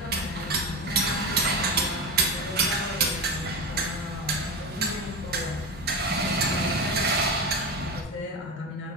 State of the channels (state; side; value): normal; both; correlation 0.20